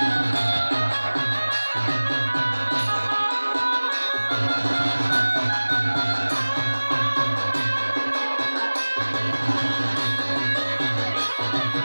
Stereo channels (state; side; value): inverted; both; correlation -1.00